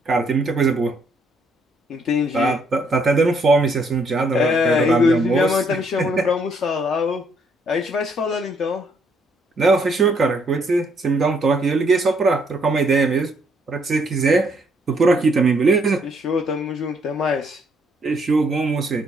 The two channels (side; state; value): both; normal; correlation 0.70